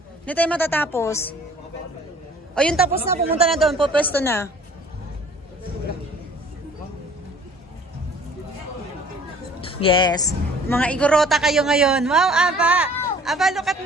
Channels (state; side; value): normal; both; correlation 0.52